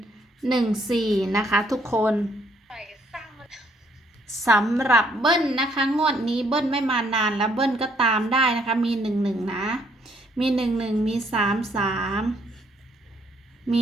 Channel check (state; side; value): normal; both; correlation 0.68